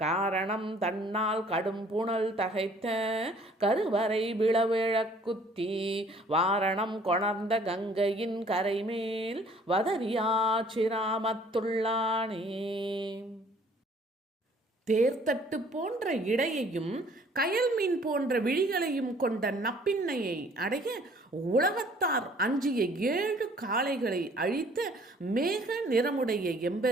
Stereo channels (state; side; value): normal; both; correlation 0.57